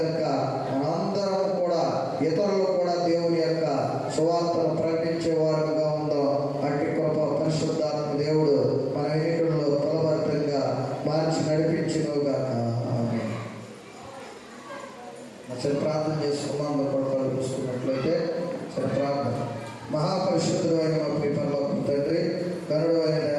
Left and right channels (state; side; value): identical; both; correlation 1.00